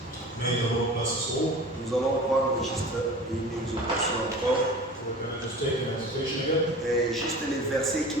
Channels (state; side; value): normal; both; correlation 0.38